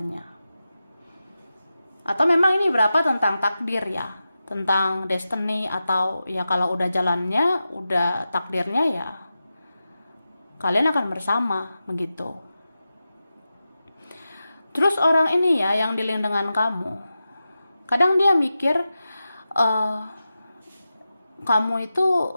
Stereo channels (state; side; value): inverted; both; correlation -0.92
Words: Atau memang ini berapa tentang takdir ya, tentang destiny, atau ya kalau udah jalannya, udah takdirnya ya kalian akan bersama begitu. Terus orang ini ya yang dealing dengan kamu, kadang dia mikir kamu itu